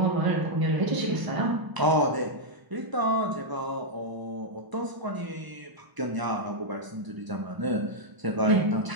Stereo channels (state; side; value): late; left; 1.0 ms